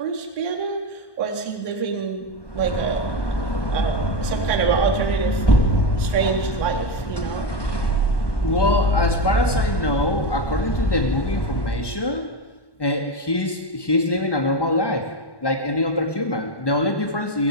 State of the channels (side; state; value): right; late; 1.2 ms